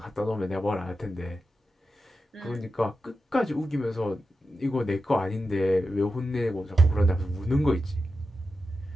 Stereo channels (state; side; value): normal; both; correlation 0.90